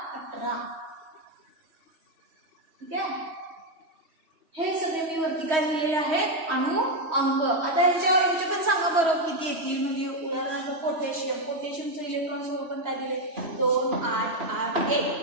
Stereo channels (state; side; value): late; left; 3.1 ms